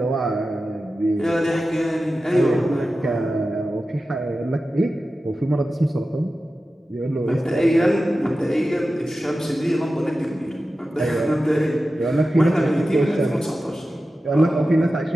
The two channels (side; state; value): both; normal; correlation 0.93